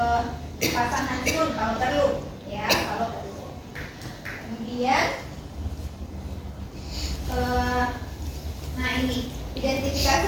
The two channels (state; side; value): identical; both; correlation 1.00